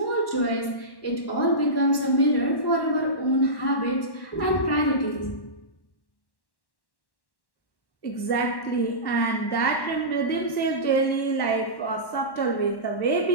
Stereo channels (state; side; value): late; right; 1.1 ms